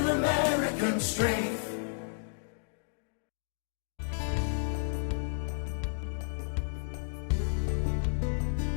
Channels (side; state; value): right; silent; digital silence